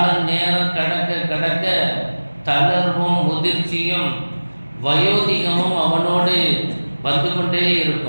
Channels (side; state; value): both; inverted; correlation -1.00